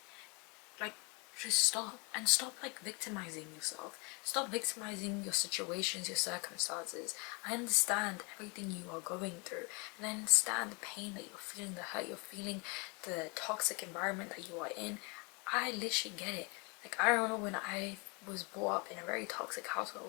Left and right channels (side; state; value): right; quieter; 31.1 dB